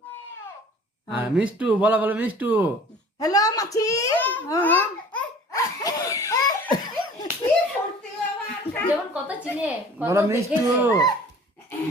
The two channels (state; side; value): normal; both; correlation 0.47